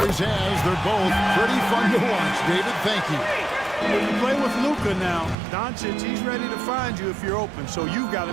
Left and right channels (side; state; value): left; drops out; at 5.4 s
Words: has. They're both pretty fun to watch. David, thank you. When you play with Luka now, Doncic, he's ready to find you if you're open, so you've got to